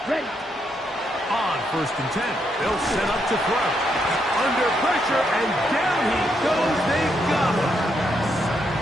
Ready. On first and 10. They'll set up to throw. Under pressure, and down he goes. They got him.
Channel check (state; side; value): normal; both; correlation 0.78